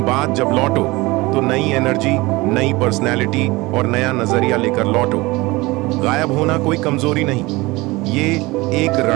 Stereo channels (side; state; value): left; quieter; 22.0 dB